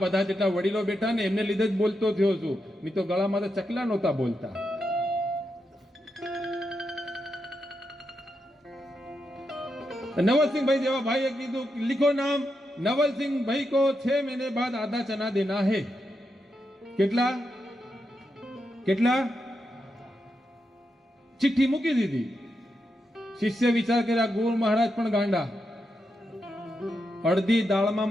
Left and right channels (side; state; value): both; normal; correlation 0.85